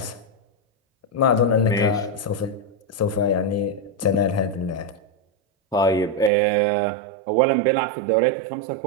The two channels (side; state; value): left; drops out; at 6.3 s